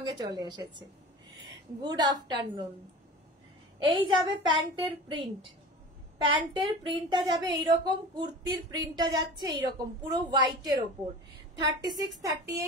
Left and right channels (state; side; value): normal; both; correlation 0.36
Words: চলে এসেছে। Good afternoon. এই যাবে প্যান্টের প্রিন্ট, প্যান্টের প্রিন্টটা যাবে এইরকম, কুর্তির প্রিন্টটা যাচ্ছে এইরকম পুরো হোয়াইটের ওপর। 36,